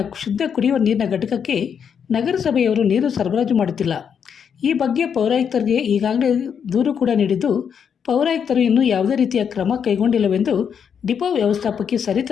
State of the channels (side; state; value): right; quieter; 7.4 dB